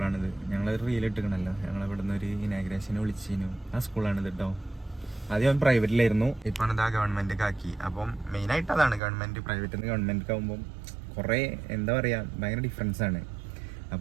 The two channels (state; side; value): drops out; left; at 9.0 s